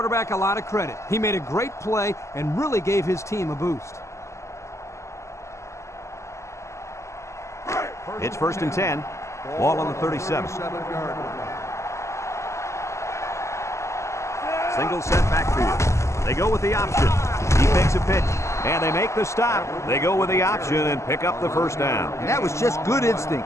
a lot of credit. He made a great play and really gave his team a boost. It's 1st and 10. Ball on the 37. Single set backfield. They go with the option. He makes a pitch, and they make the stop. They go with the option and pick up the first down. And that was just good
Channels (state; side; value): late; right; 0.14 ms